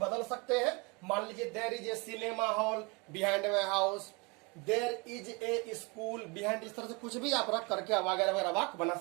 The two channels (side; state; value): left; quieter; 28.8 dB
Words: सकते हैं। मान लीजिए there is a cinema hall behind my house, there is a school behind. इस तरह से कुछ भी आप रख करके वगैरह वगैरह वाक्य बना